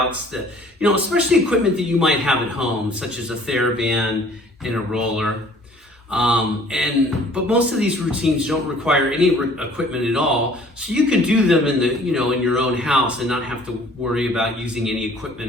that, especially equipment that you might have at home, such as a TheraBand and a roller. But most of these routines don't require any equipment at all, so you can do them in in your own house and not have to worry about using any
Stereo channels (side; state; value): both; normal; correlation 0.54